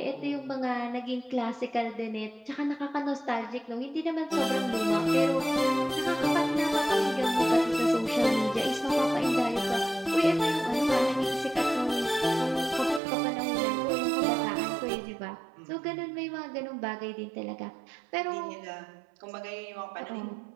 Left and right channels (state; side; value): drops out; left; at 13.0 s